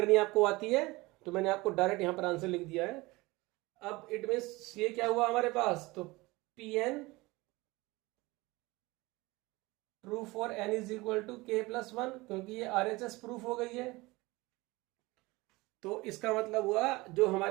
आपको आती है तो मैंने आपको डायरेक्ट यहां पर आंसर लिख दिया है। अब इट मीन्स ये क्या हुआ हमारे पास, तो Pn true for n is equal to k+1, क्योंकि ये RHS प्रूफ हो गई है। तो इसका मतलब हुआ जो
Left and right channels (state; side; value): quieter; left; 22.1 dB